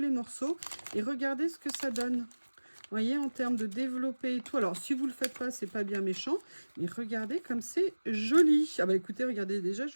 morceaux et regarder ce que ça donne. Vous voyez, en termes de développer et tout. Alors, si vous le faites pas, c'est pas bien méchant, mais regardez comme c'est joli. Ah bah écoutez, regardez, déjà, je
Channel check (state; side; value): inverted; both; correlation -1.00